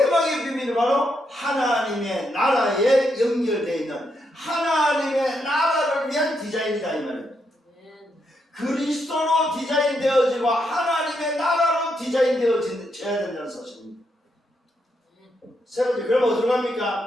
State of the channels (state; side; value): normal; both; correlation 0.80